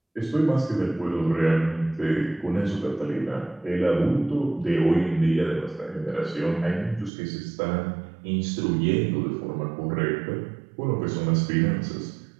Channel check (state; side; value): drops out; left; at 7.1 s